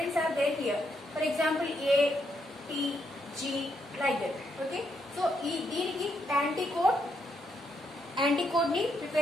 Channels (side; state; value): both; normal; correlation 0.77